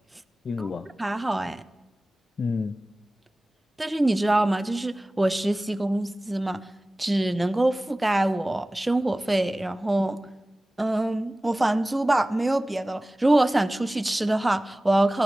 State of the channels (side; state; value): both; normal; correlation 0.98